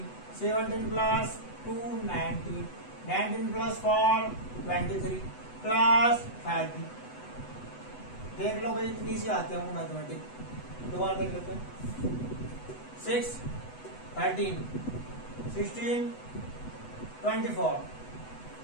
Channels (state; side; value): late; right; 8.1 ms